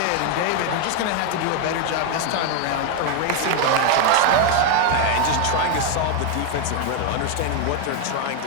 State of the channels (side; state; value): both; different; correlation 0.01